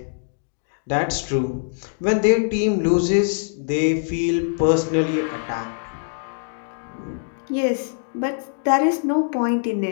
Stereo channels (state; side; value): silent; right; digital silence